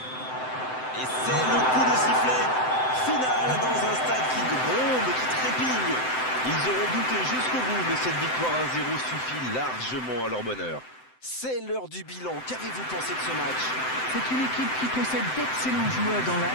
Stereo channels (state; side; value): late; right; 7.8 ms